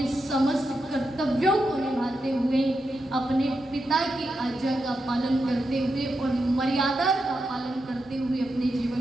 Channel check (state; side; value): normal; both; correlation 0.87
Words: समस्त कर्तव्यों को निभाते हुए, अपने पिता की आज्ञा का पालन करते हुए और मर्यादा का पालन करते हुए अपने जीवन